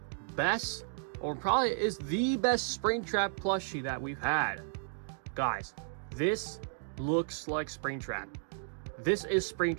best, or probably is the best Springtrap plushie that we've had. Guys, this looks like Springtrap. This is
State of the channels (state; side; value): silent; left; digital silence